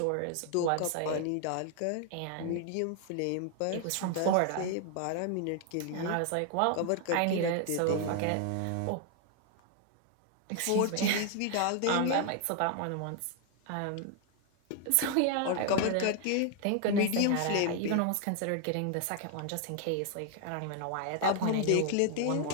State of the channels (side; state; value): both; different; correlation 0.00